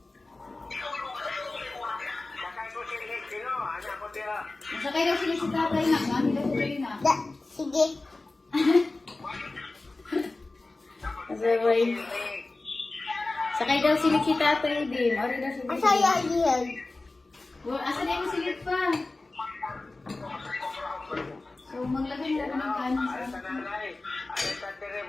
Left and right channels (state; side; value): quieter; right; 3.2 dB